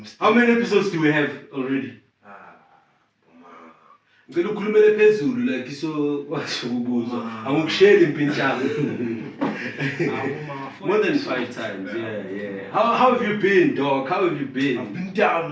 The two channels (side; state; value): both; identical; correlation 1.00